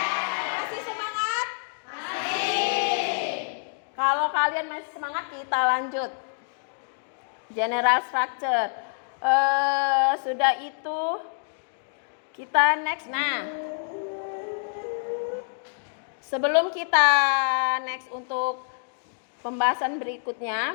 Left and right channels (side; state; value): right; silent; digital silence